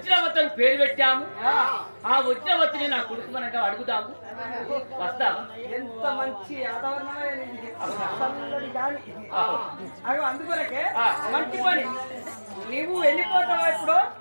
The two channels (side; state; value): both; inverted; correlation -1.00